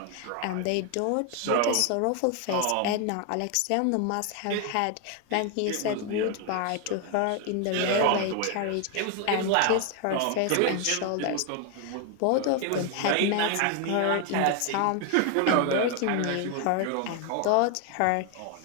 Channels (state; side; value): different; both; correlation 0.01